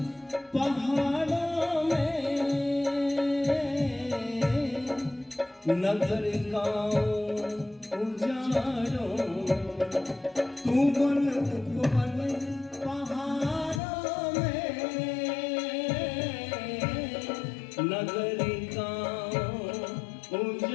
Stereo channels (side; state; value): right; drops out; at 13.8 s